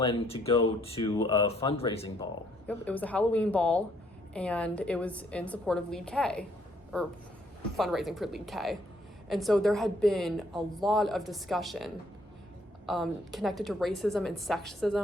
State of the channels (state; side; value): normal; both; correlation 0.68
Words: to go to a fundraising ball. Yep, it was a Halloween ball, and it was in support of Lead K, or fundraising for Lead K. And so there had been a lot of discussion connected to racism and